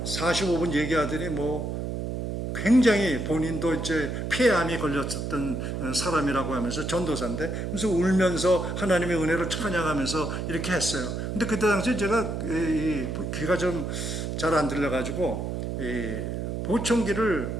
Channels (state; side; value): noise; right; hum, 3 dB below the sound